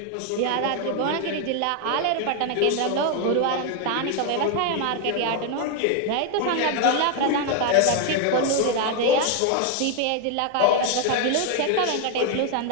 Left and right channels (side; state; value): both; different; correlation 0.01